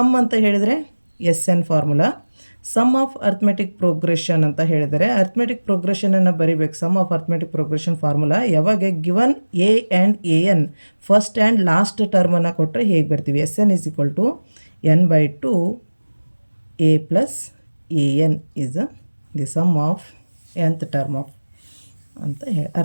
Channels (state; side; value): inverted; both; correlation -1.00